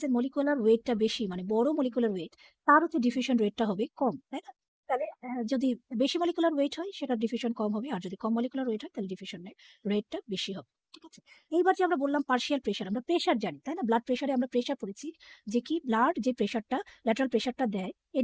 মলিকুলার ওয়েটটা বেশি, মানে বড় মলিকুলার ওয়েট, তার হচ্ছে ডিফিউশন রেটটা হবে কম, তাই না? তাহলে যদি বেশি মলিকুলার ওয়েট হয়, সেটা ডিফিউশন কম হবে, আর যদি কম মলিকুলার ওয়েট হয়, তাহলে ডিফিউশন রেটটা বেশি হবে। ঠিক আছে, এইবার যে আমরা বললাম পার্শিয়াল প্রেশার, আমরা প্রেশার জানি, তাই না? ব্লাড প্রেশারে আমরা প্রেশার পড়েছি, যে কি ব্লাড যে প্রেশারটা, ল্যাটারাল প্রেশারটা দেয়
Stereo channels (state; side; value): identical; both; correlation 1.00